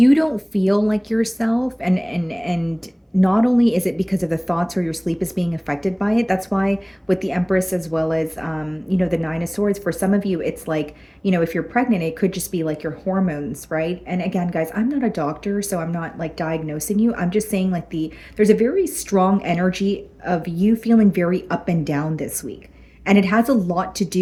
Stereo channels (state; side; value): identical; both; correlation 1.00